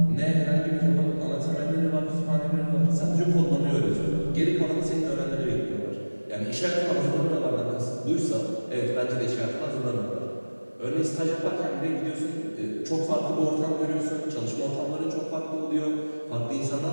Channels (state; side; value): inverted; both; correlation -1.00